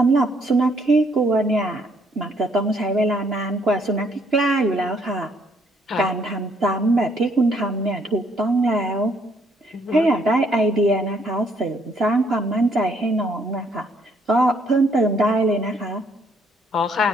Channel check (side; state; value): both; normal; correlation 0.68